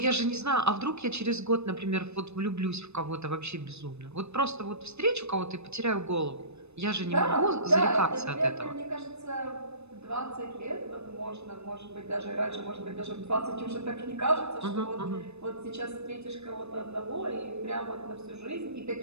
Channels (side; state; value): left; late; 0.81 ms